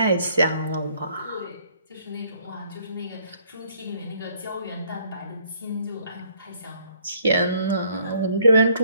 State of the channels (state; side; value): inverted; both; correlation -0.64